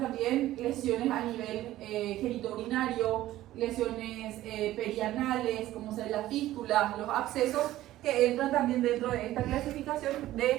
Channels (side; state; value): left; quieter; 14.8 dB